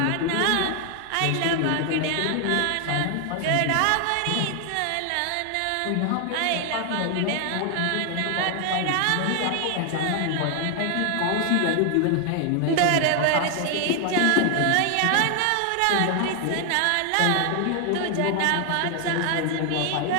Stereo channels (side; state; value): both; different; correlation 0.00